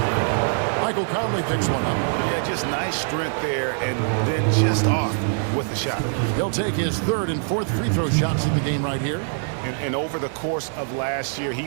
Michael Conley picks one up. Yeah, just nice strength there, and then just off with the shot. He'll take his 3rd and 4th free throw shots of the game right here. And over the course of last year,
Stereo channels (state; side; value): silent; left; digital silence